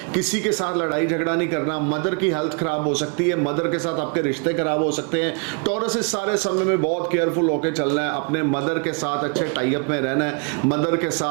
किसी के साथ लड़ाई झगड़ा नहीं करना, मदर की हेल्थ खराब हो सकती है, मदर के साथ आपके रिश्ते खराब हो सकते हैं। टॉरस इस सारे समय में बहुत केयरफुल होकर चलना है, अपने मदर के साथ अच्छे टाई अप में रहना है, मदर के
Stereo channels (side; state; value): left; quieter; 36.4 dB